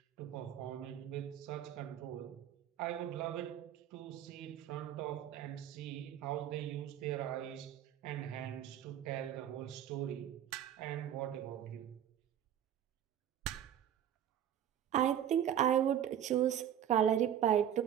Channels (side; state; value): left; quieter; 10.2 dB